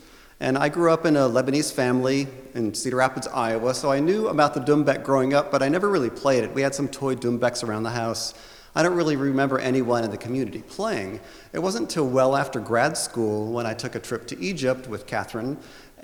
And I grew up in a Lebanese family in Cedar Rapids, Iowa, so I knew about the Dumbek growing up, but I never really played it. We had some toy Dumbeks around the house. I don't really remember anyone in the community playing. It wasn't until well after grad school when I took a trip to Egypt with Kathryn,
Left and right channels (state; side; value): identical; both; correlation 1.00